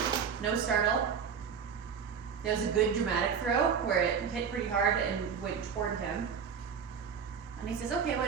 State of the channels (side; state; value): left; quieter; 6.8 dB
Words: No startle. There was a good dramatic throw where it hit pretty hard and went toward him. And he says, okay,